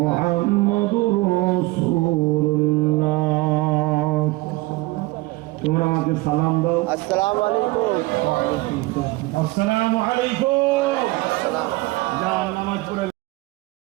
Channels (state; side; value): quieter; left; 21.3 dB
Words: মুহাম্মাদুর রাসূলুল্লাহ। তোমরা আমাকে সালাম দাও। আসসালামু আলাইকুম। আসসালামু আলাইকুম। আসসালাম। যা নামাজ পড়ে